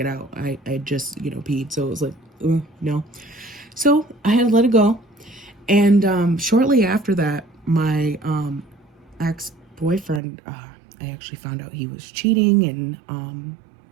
out. I just, you know, peed, so it was like, no. So I had to let it go. And shortly after that, my ex-boyfriend, I actually found out he was cheating, and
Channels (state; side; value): drops out; left; at 10.2 s